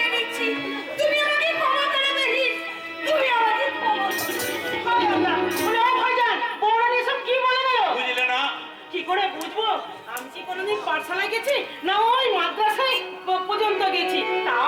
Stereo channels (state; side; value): identical; both; correlation 1.00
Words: নিচ্ছি, তুমি আমাকে ক্ষমা করে দেহি, তুমি আমাকে ক্ষমা করো। ভাইজান বৌরানী সব কি বলে গেল? বুঝলে না? কি করে বুঝবো? আমি কি কোনোদিন পাঠশালায় গেছি না ওই মাদ্রাসায় পর্যন্ত গেছি